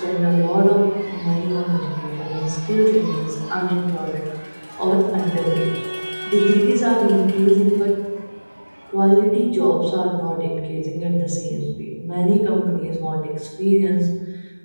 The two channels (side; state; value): both; inverted; correlation -1.00